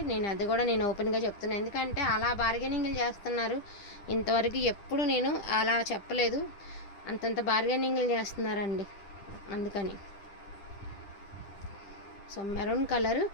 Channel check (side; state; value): right; late; 10 ms